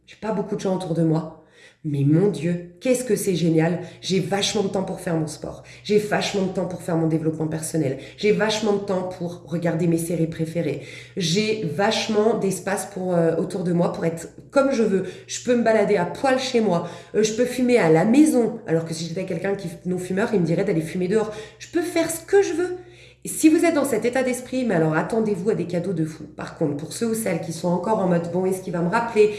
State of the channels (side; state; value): both; identical; correlation 1.00